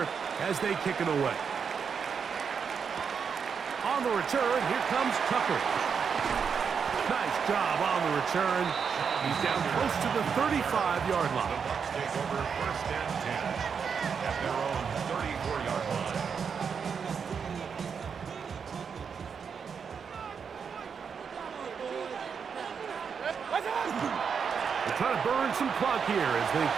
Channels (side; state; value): left; quieter; 6.4 dB